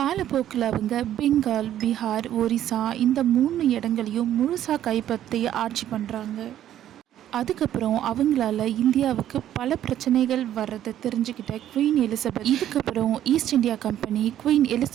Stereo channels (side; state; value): left; quieter; 11.6 dB